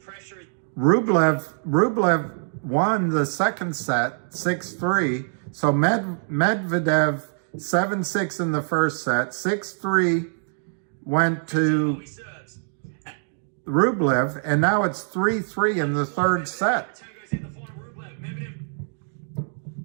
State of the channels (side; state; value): left; silent; digital silence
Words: is... Rublev won the second set 6-3. So Medvedev 7-6 in the first set, 6-3 went to Rublev, and now it's 3-3 in the third set.